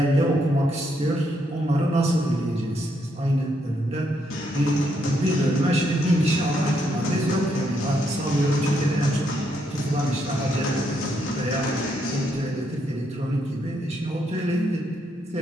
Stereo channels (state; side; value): normal; both; correlation 0.76